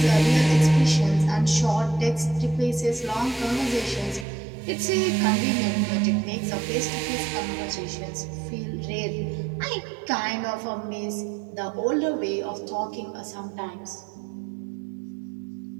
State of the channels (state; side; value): drops out; left; at 4.2 s